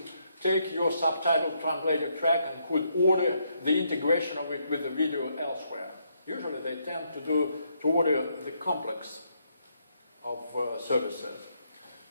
take your subtitle translated track and could order the integration of it with the video elsewhere. Usually they tend to order the complex of services.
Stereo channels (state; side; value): inverted; both; correlation -0.75